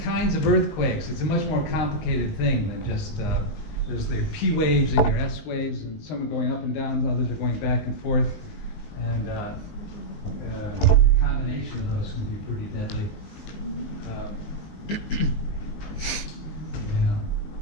kinds of earthquakes. It's a much more complicated thing than just there's the P waves and your S waves, and some are going up and down, others are going back and forth, and the combination of those can be pretty deadly. Yeah.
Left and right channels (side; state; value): right; late; 19 ms